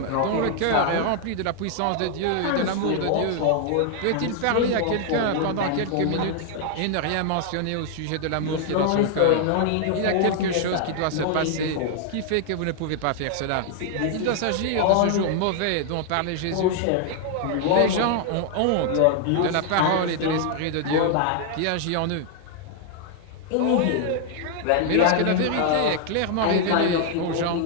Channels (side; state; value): both; different; correlation 0.00